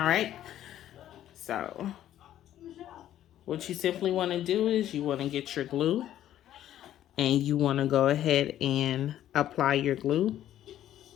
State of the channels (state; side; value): quieter; right; 12.0 dB